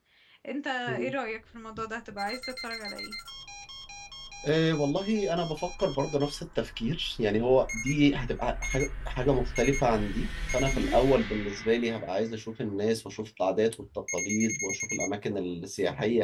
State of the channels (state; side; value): identical; both; correlation 1.00